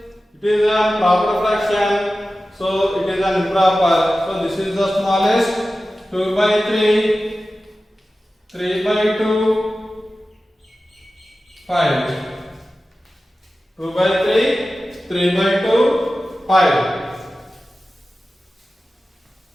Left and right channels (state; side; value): normal; both; correlation 0.95